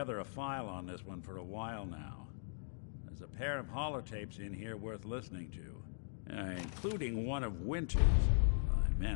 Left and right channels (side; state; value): right; silent; digital silence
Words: a file on this one for a while now. There's a pair of holotapes in here worth listening to, including one of Winter's. I